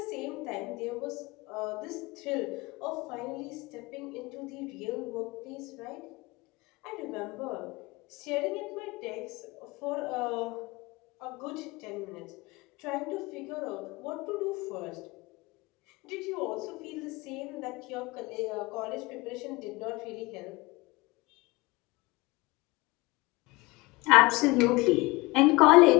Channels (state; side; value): quieter; right; 23.0 dB